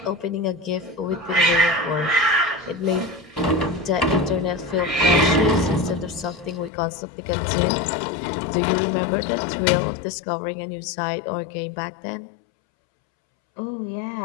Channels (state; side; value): drops out; right; at 6.7 s